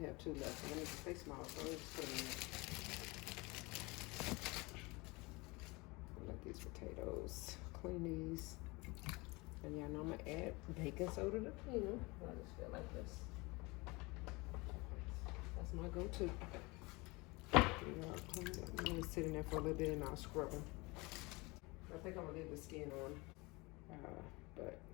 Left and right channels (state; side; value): quieter; right; 24.9 dB